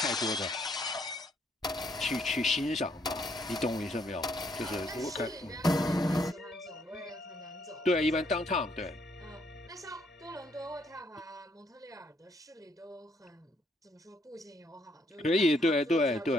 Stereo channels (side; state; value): both; normal; correlation 0.70